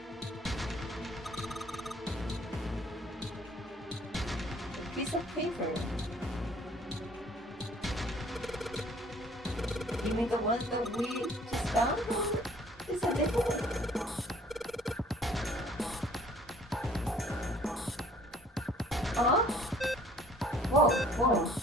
a piece of paper. You mean the one that we just found? Is that different? Huh? Whoa, whoa,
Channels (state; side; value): normal; both; correlation 0.56